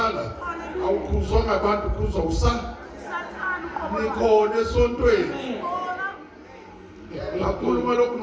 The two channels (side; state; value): both; identical; correlation 1.00